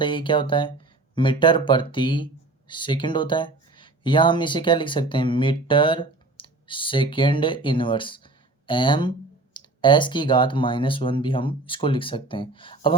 क्या होता है? मीटर प्रति सेकंड होता है। या हम इसे क्या लिख सकते हैं? Metre second inverse m s की घात -1 भी हम इसको लिख सकते हैं। अब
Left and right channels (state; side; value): quieter; left; 3.1 dB